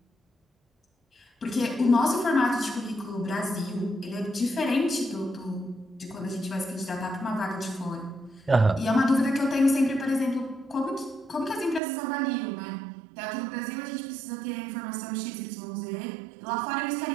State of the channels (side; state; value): left; drops out; at 11.8 s